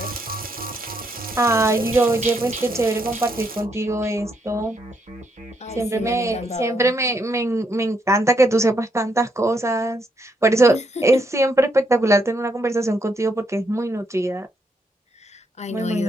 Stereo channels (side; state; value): both; normal; correlation 0.76